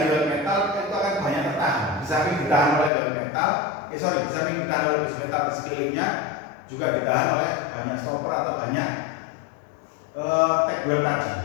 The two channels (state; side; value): drops out; right; at 2.9 s